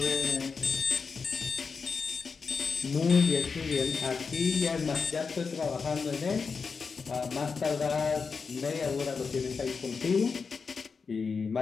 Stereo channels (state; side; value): quieter; right; 5.2 dB